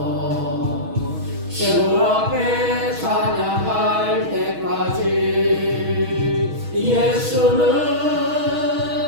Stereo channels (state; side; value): late; left; 6.3 ms